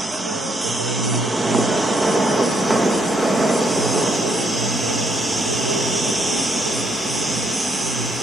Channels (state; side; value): normal; both; correlation 0.73